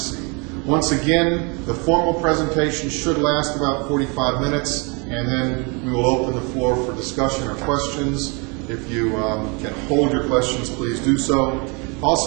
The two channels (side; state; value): left; quieter; 31.4 dB